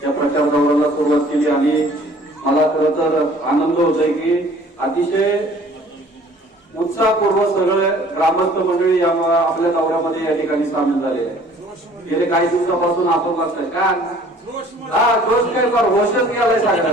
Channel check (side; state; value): both; normal; correlation 0.53